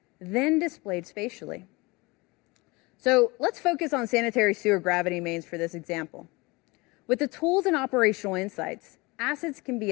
then displayed spatially. So let's focus on sanitary sewer gravity mains for this example. With the tools and operational insights, assets can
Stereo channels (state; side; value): quieter; right; 24.4 dB